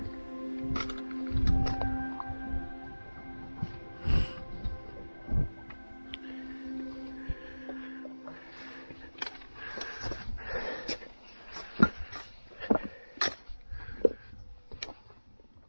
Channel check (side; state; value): both; inverted; correlation -1.00